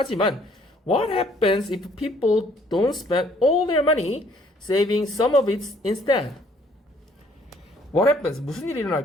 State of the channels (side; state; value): both; normal; correlation 0.62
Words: what happens if people don't spend all their money saving some of it instead? What happens? 무슨 일이